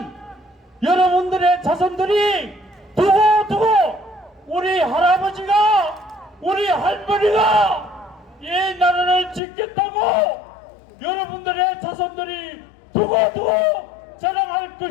여러분들의 자손들이 두고두고 우리 할아버지가 우리 할머니가 이 나라를 지켰다고 여러분들의 자손들이 두고두고 자랑할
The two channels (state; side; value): drops out; right; at 9.4 s